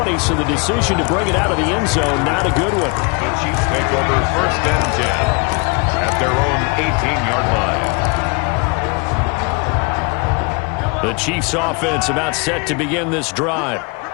so the decision to bring it out of the end zone, not a good one. The Chiefs take over 1st and 10 at their own 18-yard line. The Chiefs offense about set to begin this drive.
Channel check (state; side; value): quieter; right; 31.0 dB